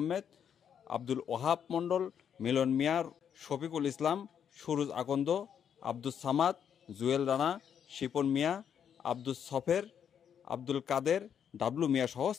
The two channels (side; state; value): right; quieter; 8.3 dB